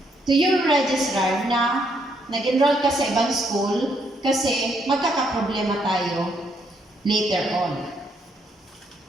to your registrar na nag-enroll ka sa ibang school kasi magkakaproblema tayo later on.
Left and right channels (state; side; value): normal; both; correlation 0.73